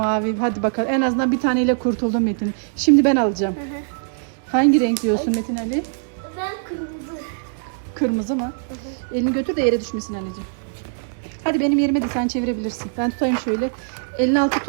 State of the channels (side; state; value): left; silent; digital silence